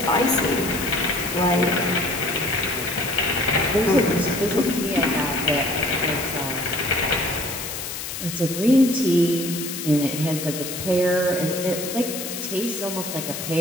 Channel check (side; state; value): left; noise; hiss, 7 dB below the sound